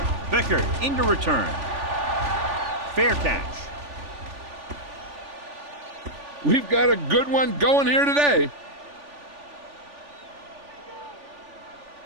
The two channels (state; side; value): late; left; 3.4 ms